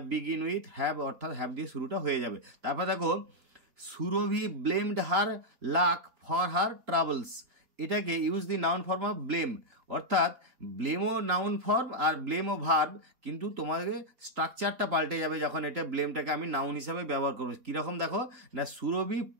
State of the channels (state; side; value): late; left; 3.8 ms